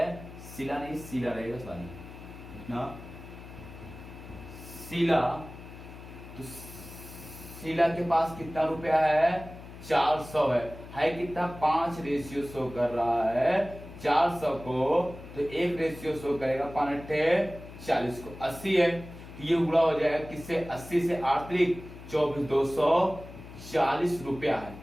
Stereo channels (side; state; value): left; noise; hum, 15 dB below the sound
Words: शीला नहीं शीला रहेगा, सॉरी इतना शीला, तो शीला के पास कितना रुपया है? 400 है कितना? 5 शो कर रहा है 400 को, तो 1 शो करेगा 5×8 = 40 को 80 है। ये गुणा हो जाएगा किससे? 80 से 8 × 24 240 रुपया है।